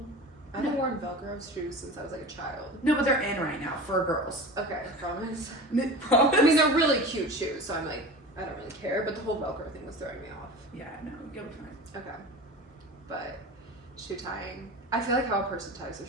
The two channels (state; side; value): normal; both; correlation 0.33